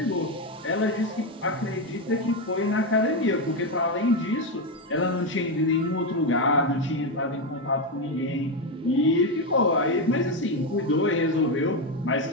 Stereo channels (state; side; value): normal; both; correlation 0.09